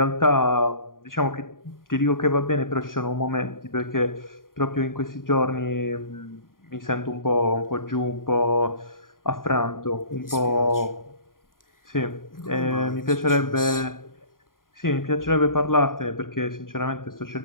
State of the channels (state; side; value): late; right; 0.91 ms